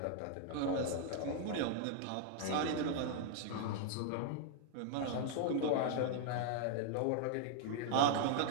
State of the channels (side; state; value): both; different; correlation 0.00